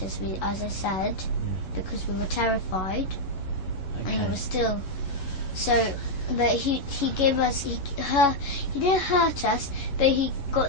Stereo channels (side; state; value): right; late; 11 ms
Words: as I said, because we were terrified, and we were still. So, but he gave us he didn't hurt us, but he